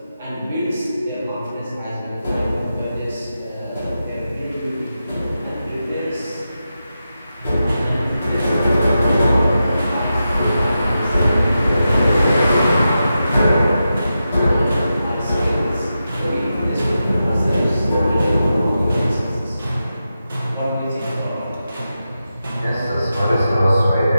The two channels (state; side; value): inverted; both; correlation -0.89